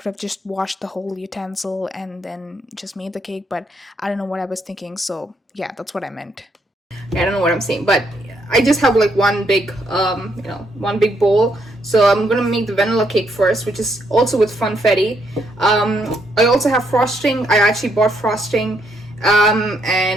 have just washed the whole utensil and then just made the cake, but I don't know what I was thinking. So yeah, that's what I meant. I don't know what I'm saying, but I just have like one big you know, one big bowl. So I'm gonna make the vanilla cake first, which is also with funfetti. I also have frosting. I actually bought frosting,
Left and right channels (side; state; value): both; normal; correlation 0.74